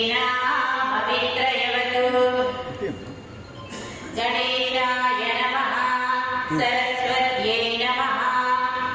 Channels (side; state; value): both; identical; correlation 1.00